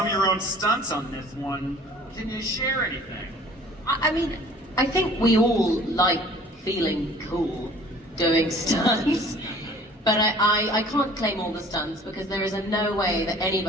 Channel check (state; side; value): normal; both; correlation 0.50